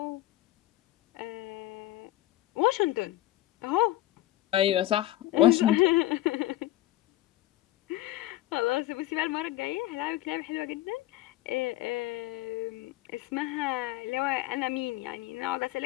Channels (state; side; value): quieter; right; 15.5 dB